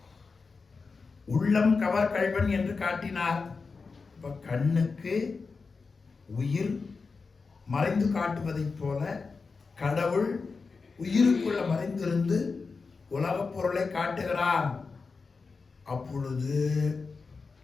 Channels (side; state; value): right; quieter; 4.6 dB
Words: உள்ளம் கவர் கள்வன் என்று காட்டினார். இப்போ கண்ணுக்கு உயிர் மறைந்து காட்டுவதைப் போல கடவுள் உயிருக்குள்ள மறைந்திருந்து உலகப் பொருளை காட்டுகிறான். அப்பொழுது